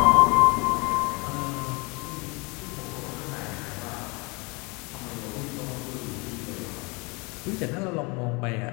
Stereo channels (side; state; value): right; quieter; 28.4 dB